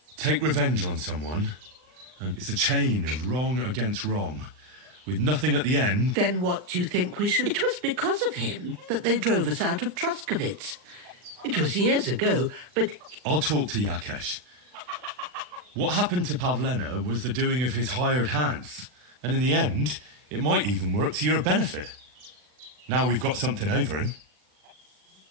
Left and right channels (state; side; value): late; left; 39 ms